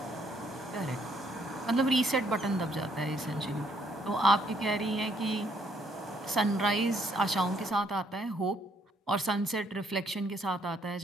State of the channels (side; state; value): both; normal; correlation 0.69